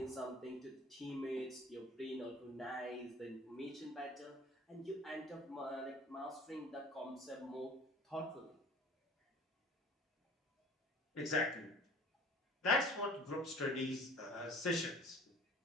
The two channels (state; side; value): normal; both; correlation 0.47